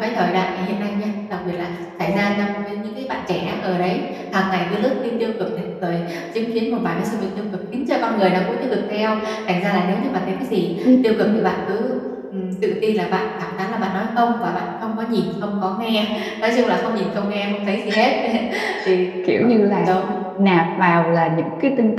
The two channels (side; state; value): both; identical; correlation 1.00